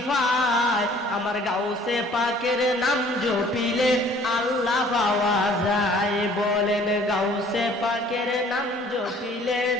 পাই। আমার গাউসে পাকের নাম জপিলে আল্লাহ পাওয়া যায়। বলেন গাউসে পাকের নাম জপিলে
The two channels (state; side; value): normal; both; correlation 0.55